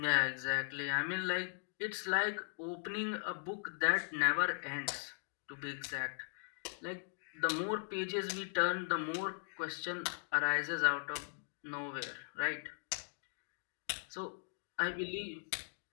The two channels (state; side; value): silent; right; digital silence